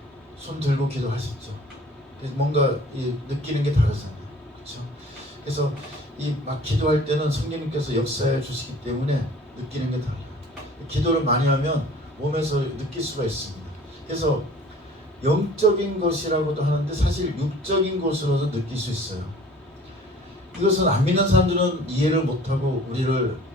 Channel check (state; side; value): normal; both; correlation 0.49